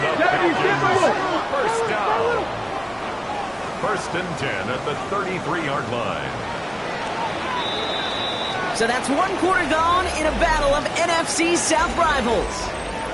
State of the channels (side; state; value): both; identical; correlation 1.00